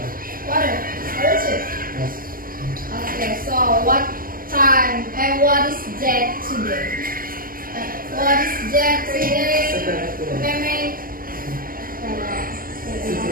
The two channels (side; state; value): left; late; 0.41 ms